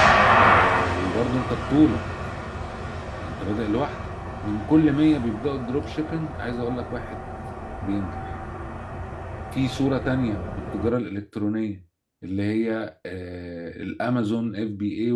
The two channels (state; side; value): identical; both; correlation 1.00